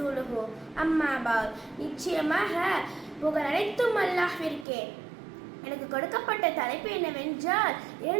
அம்மா பஅத். நிச்சயமாக புகழ் அனைத்தும் அல்லாஹ்விற்கே. எனக்கு கொடுக்கப்பட்ட தலைப்பு என்னவென்றால்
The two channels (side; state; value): left; drops out; at 4.7 s